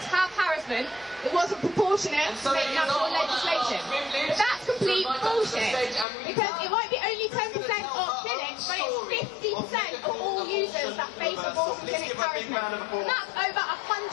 have harassment, it wasn't proportionate to make national legislation. But that's complete bullshit, because it might be only 10% of clinics, but it's 50% of all users that face abortion clinic harassment. And that's over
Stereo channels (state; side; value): drops out; right; at 6.1 s